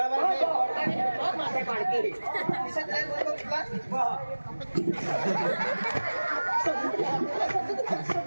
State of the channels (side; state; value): both; inverted; correlation -1.00